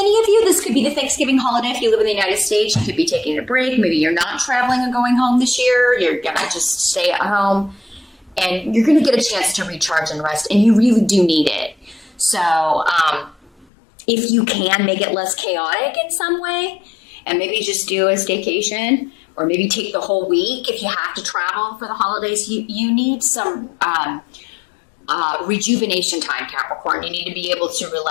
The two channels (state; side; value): drops out; right; at 13.7 s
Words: of you, this could be the Thanksgiving holiday. If you live in the United States, you could be taking a break. Maybe you're not traveling and going home this year. You're going to just stay at home. And you're going to get a chance to recharge and rest, and you really do need it. So if you can make it less chaotic in some way, and maybe just do a staycation, or maybe take the whole week if you have to travel for the holidays, you need some rejuvenation time, Capricorn. You need to be able to